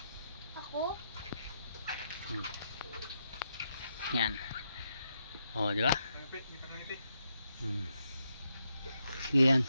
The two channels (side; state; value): both; inverted; correlation -0.81